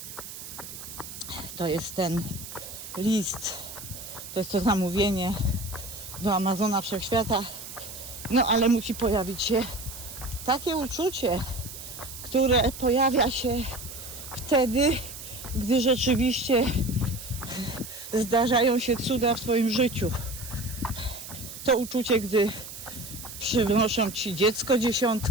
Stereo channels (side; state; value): right; noise; hiss, 12 dB below the sound